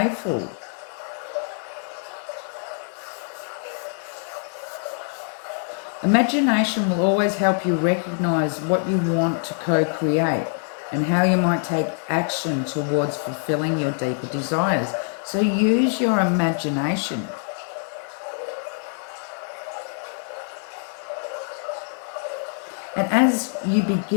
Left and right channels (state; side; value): silent; right; 62 dB below the other